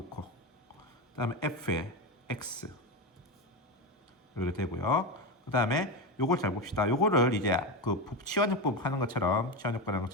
그 다음에 f의 x 이렇게 되고요. 그 다음에 요걸 잘 봅시다. 요거를 이제 그 치환역법 하는 것처럼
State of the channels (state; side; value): normal; both; correlation 0.15